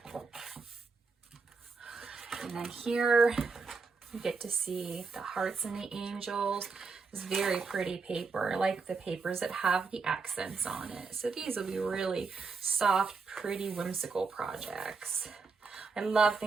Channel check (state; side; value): quieter; left; 4.6 dB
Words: then here you get to see the hearts and the angels. It's very pretty paper. I like the papers that have the accents on it. So these will be really soft, pretty, whimsical projects. I love